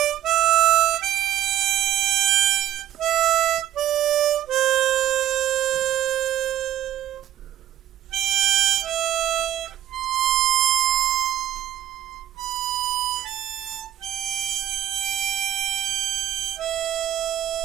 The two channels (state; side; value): quieter; left; 12.1 dB